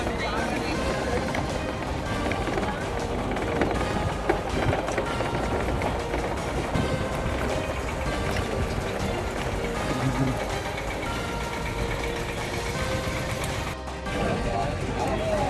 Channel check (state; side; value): identical; both; correlation 1.00